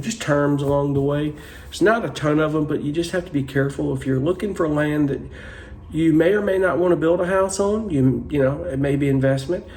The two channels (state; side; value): identical; both; correlation 1.00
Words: just terms along the way. There's not a ton of them, but you just have to be careful. If you're looking for land that you may or may not want to build a house on, it may be investment.